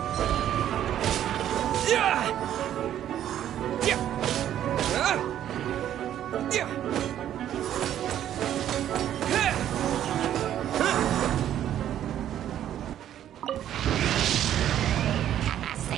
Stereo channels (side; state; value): left; quieter; 11.1 dB